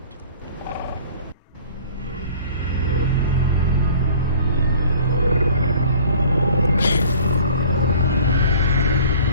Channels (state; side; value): inverted; both; correlation -0.49